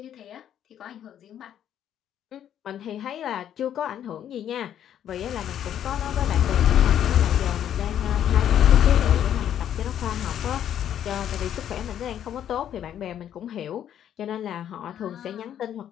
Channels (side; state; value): right; quieter; 10.2 dB